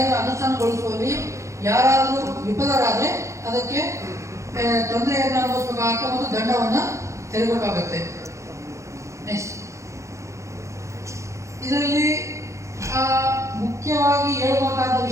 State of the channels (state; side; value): late; left; 0.14 ms